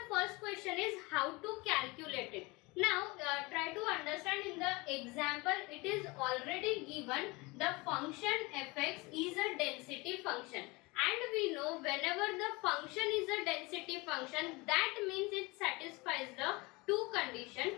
first question is how to calculate it. Now try to understand in the example it is already given the function fx is a density function. And we know whenever the function is a density function, that means it satisfies the two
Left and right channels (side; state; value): right; quieter; 24.7 dB